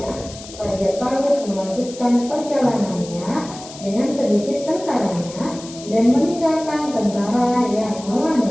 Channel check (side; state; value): left; noise; hiss, 16 dB below the sound